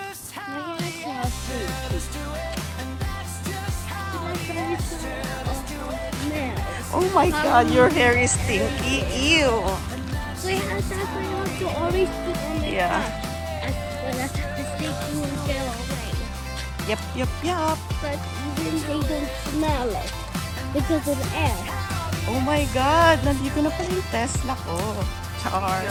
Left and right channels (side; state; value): both; identical; correlation 1.00